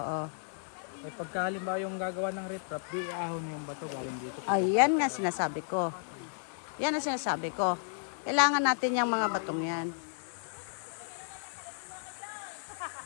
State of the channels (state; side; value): silent; right; digital silence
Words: Eh pagka halimbawa yung gagawa ng riprap, di iahon na yung bato galing dito. Ayan nga sinasabi ko. Yan ang sinasabi ko. Kailangan natin yung mga batong yan.